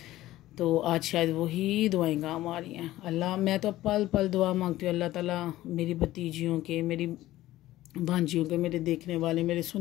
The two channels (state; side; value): quieter; right; 15.6 dB